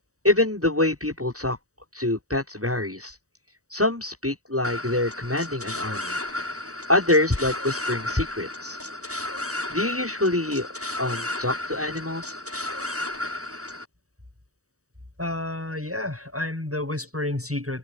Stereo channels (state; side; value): late; left; 0.66 ms